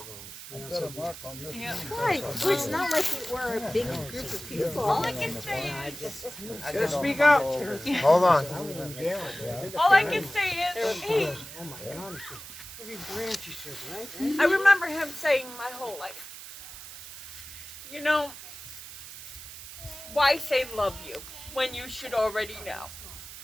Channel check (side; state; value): right; noise; hiss, 13 dB below the sound